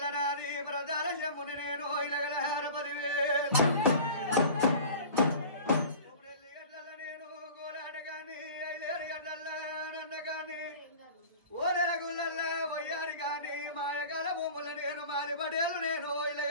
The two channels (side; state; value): both; inverted; correlation -0.39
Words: నాది ప్రధాన శంభుని నేను ఇలగలహార పదివే గడ్డల్ల నేను గోలాట గాని 5 గడ్డల్ల నన్న గాని ఓదల గుళ్ళల్ల వయ్యారి గాని మాయకాల భూముల నేను మారి పడేలు నేను